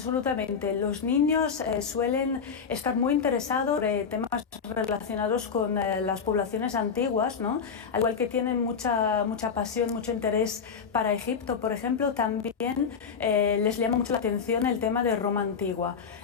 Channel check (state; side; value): quieter; right; 6.2 dB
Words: Los niños suelen estar muy interesados en temas relacionados con las poblaciones antiguas, ¿no? Al igual que tienen mucha pasión, mucho interés para Egipto, por ejemplo, también les llama mucho la atención el tema de Roma antigua.